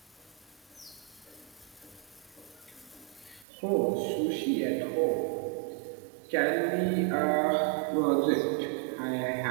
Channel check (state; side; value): drops out; left; at 3.5 s